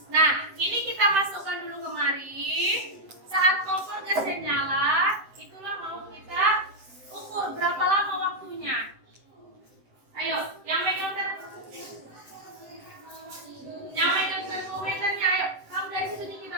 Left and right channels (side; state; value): left; late; 7.8 ms